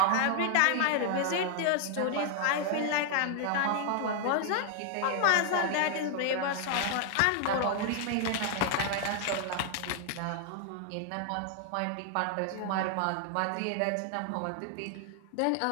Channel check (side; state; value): both; different; correlation 0.00